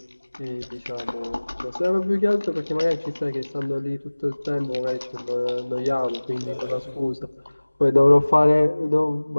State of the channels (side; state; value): both; inverted; correlation -1.00